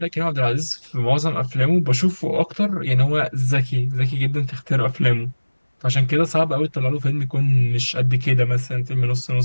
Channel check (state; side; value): inverted; both; correlation -1.00